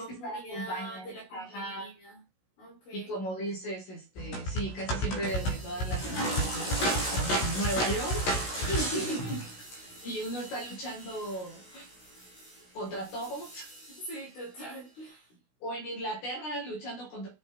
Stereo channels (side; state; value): right; late; 16 ms